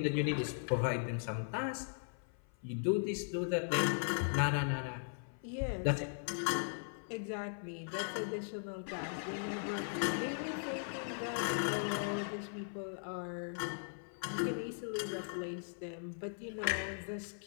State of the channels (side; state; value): right; silent; 52 dB below the other